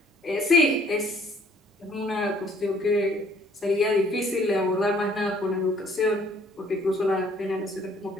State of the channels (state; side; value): normal; both; correlation 0.60